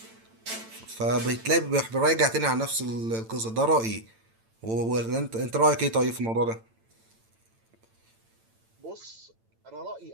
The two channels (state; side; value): late; left; 8.9 ms